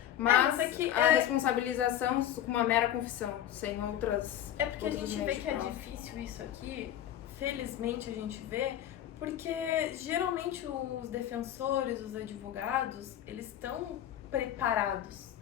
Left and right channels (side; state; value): right; quieter; 11.3 dB